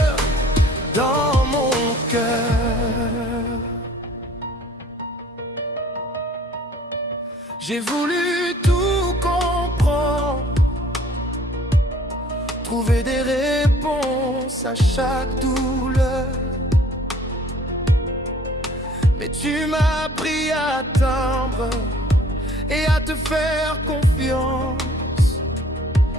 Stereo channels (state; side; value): normal; both; correlation 0.54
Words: dans mon cœur. J'ai voulu tout comprendre, trouver des réponses à chaque douleur, mais tu m'as appris à attendre et à te faire confiance,